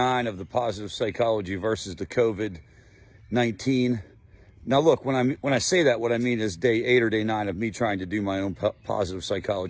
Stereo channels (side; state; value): both; identical; correlation 1.00